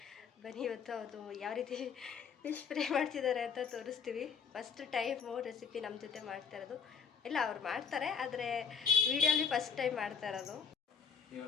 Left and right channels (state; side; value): quieter; right; 6.5 dB